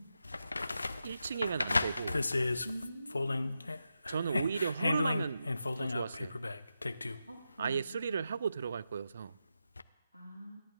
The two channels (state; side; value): inverted; both; correlation -0.88